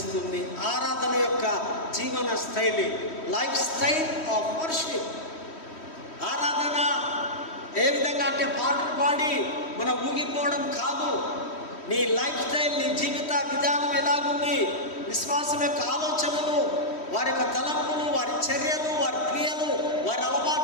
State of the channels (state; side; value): late; right; 3.1 ms